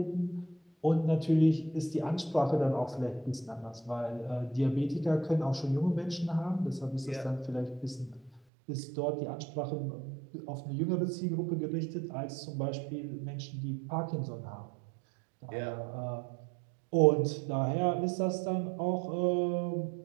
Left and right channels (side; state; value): left; drops out; at 8.4 s